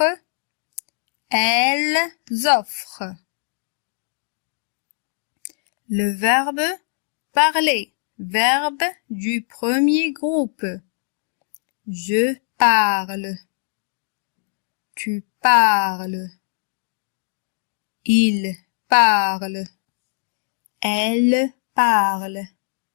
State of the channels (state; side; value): silent; right; digital silence